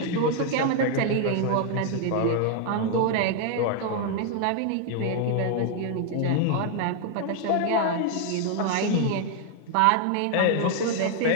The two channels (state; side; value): different; both; correlation 0.00